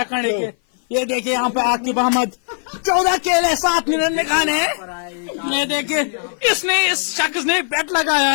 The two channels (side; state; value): right; silent; 56 dB below the other